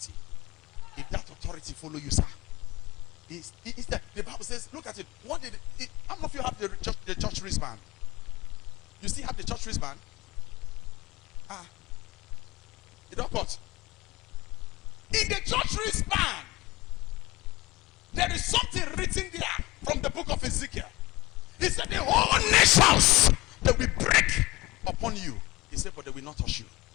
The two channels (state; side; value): quieter; right; 20.0 dB